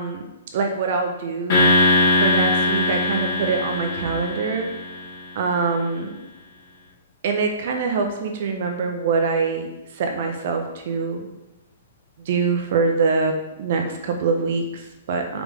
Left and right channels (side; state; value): both; inverted; correlation -0.46